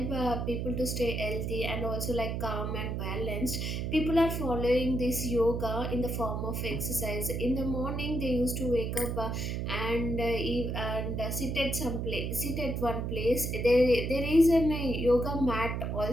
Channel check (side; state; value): right; noise; hum, 2 dB below the sound